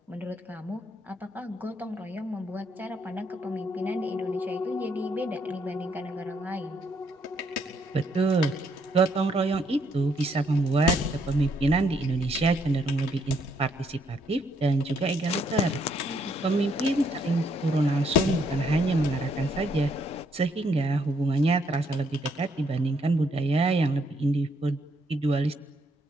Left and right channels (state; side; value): normal; both; correlation 0.71